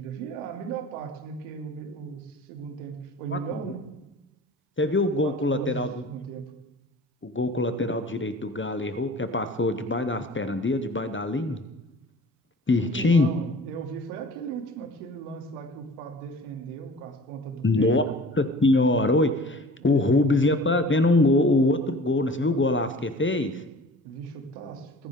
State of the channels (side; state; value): both; normal; correlation 0.44